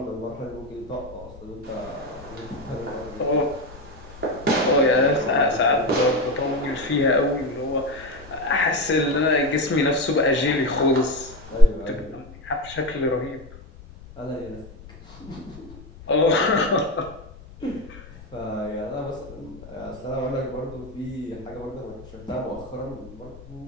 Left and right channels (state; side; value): noise; left; rumble, 18 dB below the sound